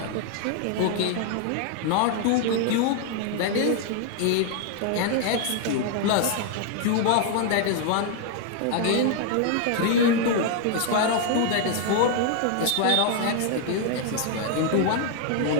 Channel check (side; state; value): both; different; correlation 0.00